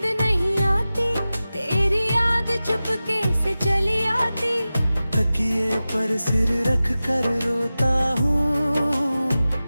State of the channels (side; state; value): both; inverted; correlation -0.96